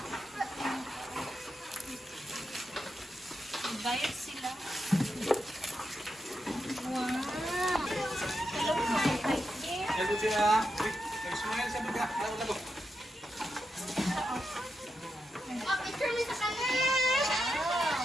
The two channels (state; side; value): normal; both; correlation 0.85